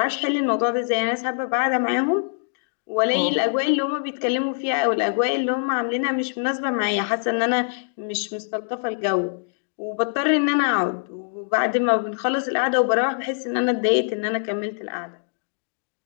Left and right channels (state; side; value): silent; right; digital silence